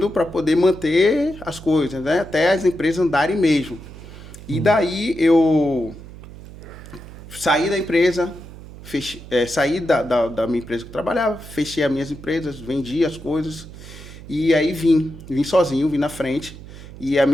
para poder manter as coisas, né? Até as empresas andarem mesmo. E daí eu saí da empresa, saí da minha empresa que eu trabalhava, fechei as minhas empresas, vendi as coisas e aí vim sozinho, vim na frente e a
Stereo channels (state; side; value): noise; right; hum, 16 dB below the sound